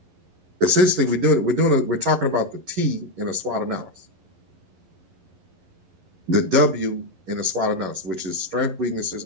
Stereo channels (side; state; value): left; late; 11 ms